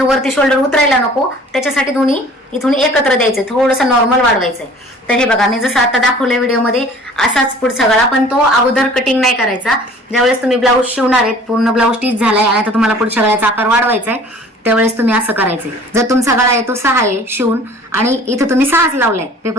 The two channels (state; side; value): normal; both; correlation 0.49